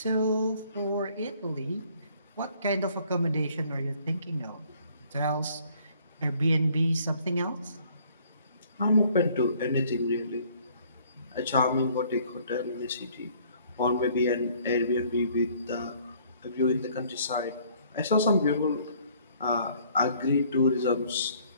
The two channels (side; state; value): both; inverted; correlation -0.60